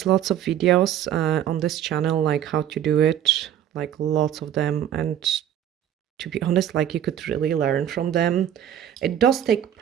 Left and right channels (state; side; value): quieter; left; 10.4 dB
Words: lots of videos on this channel like how to do it, like lots of them, and to be honest, like you could really learn from them. It does take